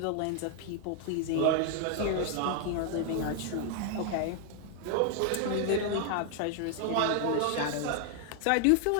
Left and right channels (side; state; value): both; different; correlation 0.00